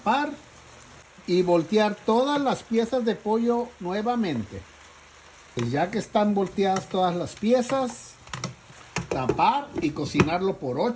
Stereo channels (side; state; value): both; identical; correlation 1.00